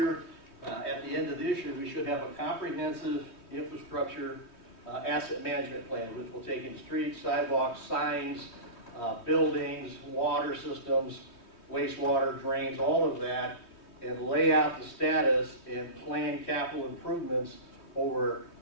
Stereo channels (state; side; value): late; right; 3.2 ms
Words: at the end of this year, we should have a comprehensive infrastructure asset management plan, which will take in streets, sidewalks, signs, buildings, water systems, wastewater, drains, all of that, and lay out the status and plan capital improvements over